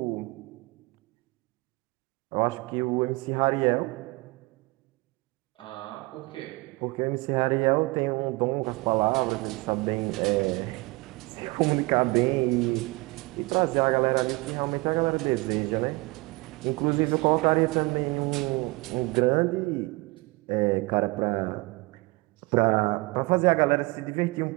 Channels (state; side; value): quieter; left; 24.4 dB